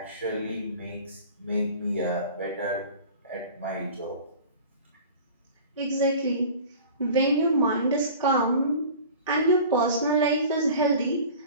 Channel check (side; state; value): both; inverted; correlation -0.41